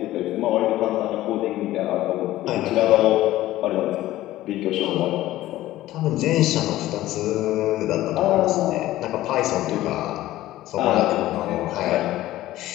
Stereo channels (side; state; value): right; quieter; 15.4 dB